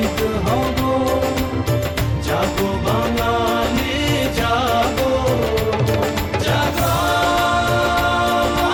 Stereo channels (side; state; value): both; identical; correlation 1.00